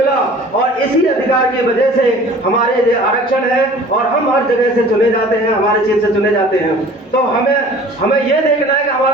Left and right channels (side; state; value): both; normal; correlation 0.47